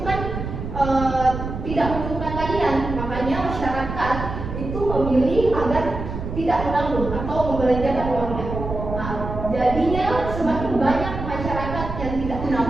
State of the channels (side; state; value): right; noise; rumble, 6 dB below the sound